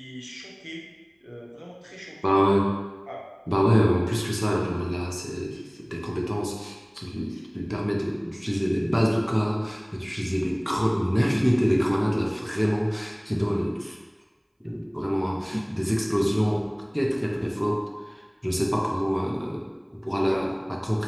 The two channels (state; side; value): identical; both; correlation 1.00